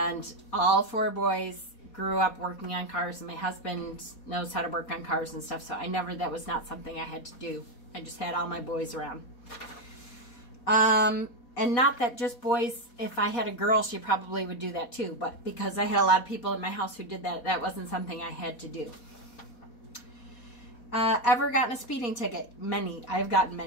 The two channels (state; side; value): late; right; 4.2 ms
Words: all 4 boys grew up working on cars, and my husband knows how to work on cars and stuff, so that was not something I had to do. I just had all my boys around. And not that just boys, if I had a girl, she probably would do that too, but because I had a lot of people in my house who did that, that wasn't something I had to do. Ever gotten a speeding ticket? Many. I've gotten